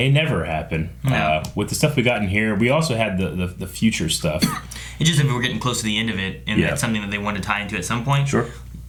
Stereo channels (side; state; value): both; identical; correlation 1.00